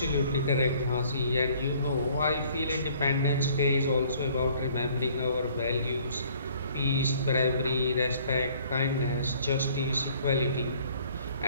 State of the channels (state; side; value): inverted; both; correlation -0.58